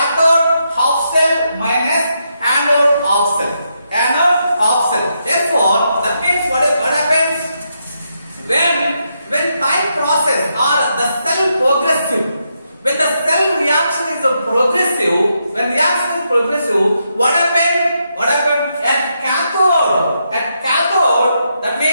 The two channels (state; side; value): inverted; both; correlation -0.81